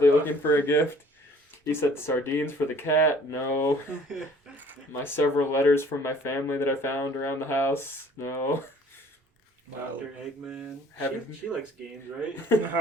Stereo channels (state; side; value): normal; both; correlation 0.54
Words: looking for a gift. He said sardines for the cat. No. My several letters from my family that I found around the house. No. Dr. Eggman. She likes games, right?